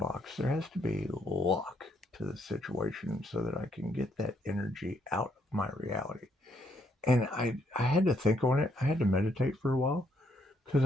There has to be a lock to the situation so that I can get that energy out of my reality. And I had to think on it. I had to meditate for a while, because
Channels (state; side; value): normal; both; correlation 0.72